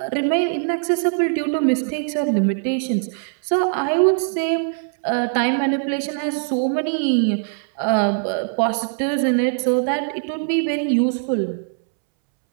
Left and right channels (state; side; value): silent; left; 65 dB below the other